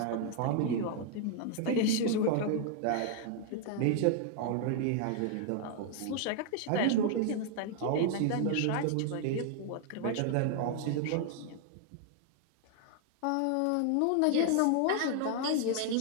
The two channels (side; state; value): both; different; correlation 0.00